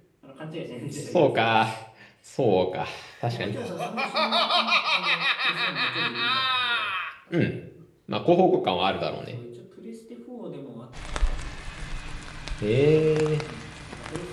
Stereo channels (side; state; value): both; identical; correlation 1.00